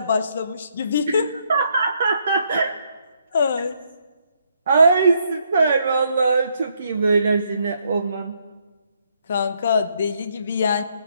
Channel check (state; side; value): inverted; both; correlation -0.73